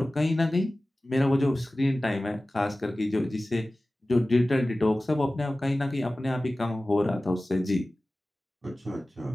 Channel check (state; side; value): normal; both; correlation 0.97